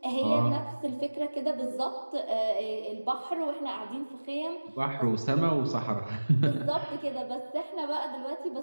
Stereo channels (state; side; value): inverted; both; correlation -1.00